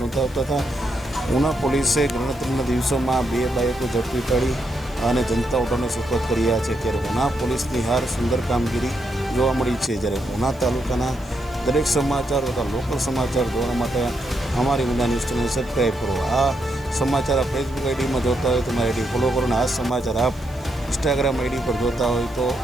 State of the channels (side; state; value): right; noise; hiss, 27 dB below the sound